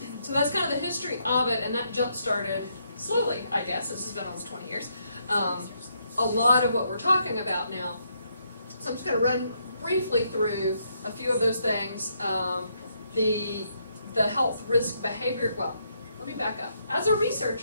that's kind of the history of it, and that jump started slowly, I guess. This has been almost 20 years. A lot of what we're talking about now. So I'm just going to run briefly through a few of those things. The health risk behavior. Well, let me back up. As a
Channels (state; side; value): inverted; both; correlation -0.76